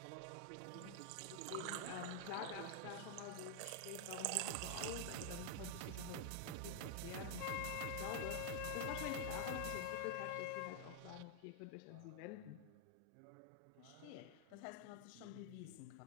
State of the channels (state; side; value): different; both; correlation 0.00